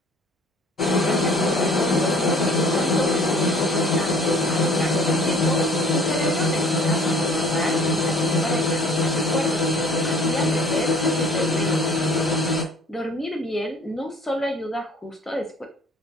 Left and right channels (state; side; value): normal; both; correlation 0.52